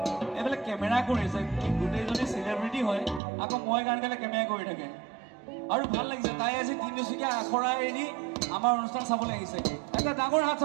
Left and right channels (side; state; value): left; drops out; at 3.2 s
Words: एबेले camera करिছে गुटेजनी celebrity হয় আকৌ মই গান গালে কেমেৰা কৰি থাকে আৰু ভাল লাগিছে তাই আজি তিনিচুকীয়া আখৰা এৰি আমাৰ অনুষ্ঠান চাবলৈ আহিছে এটা ডাঙৰ হাত